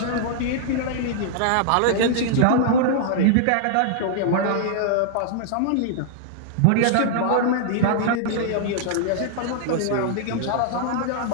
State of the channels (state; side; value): different; both; correlation -0.01